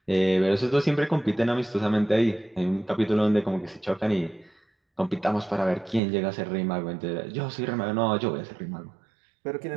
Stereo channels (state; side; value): drops out; left; at 6.0 s